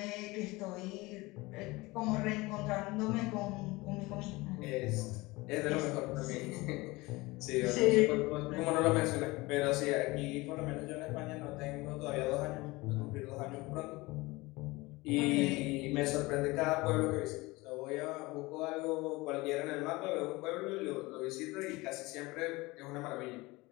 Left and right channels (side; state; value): right; quieter; 22.1 dB